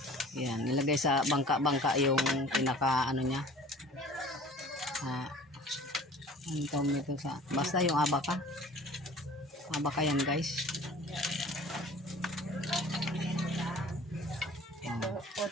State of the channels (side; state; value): both; normal; correlation 0.46